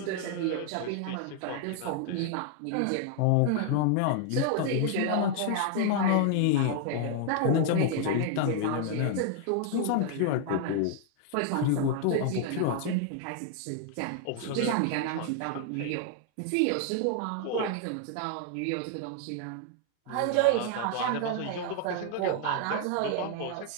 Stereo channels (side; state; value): both; different; correlation 0.00